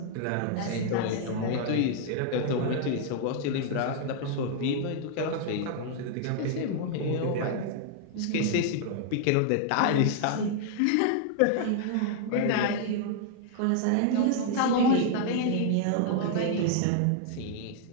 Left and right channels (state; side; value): different; both; correlation 0.00